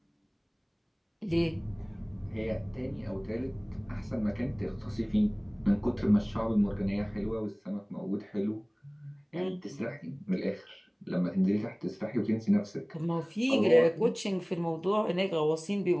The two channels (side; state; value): both; identical; correlation 1.00